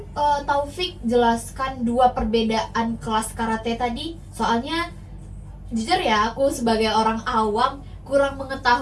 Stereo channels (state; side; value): identical; both; correlation 1.00